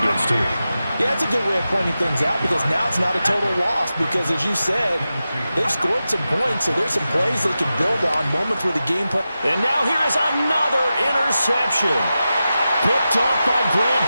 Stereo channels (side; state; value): both; inverted; correlation -0.92